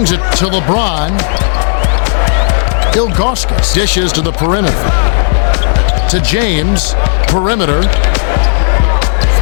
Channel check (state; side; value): silent; right; digital silence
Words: it to LeBron. Ilgauskas dishes to the perimeter. To James. Perimeter.